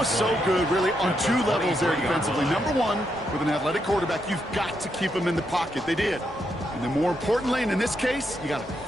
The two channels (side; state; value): both; normal; correlation 0.81